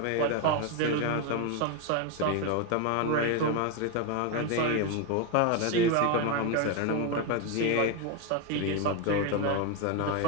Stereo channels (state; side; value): different; both; correlation 0.02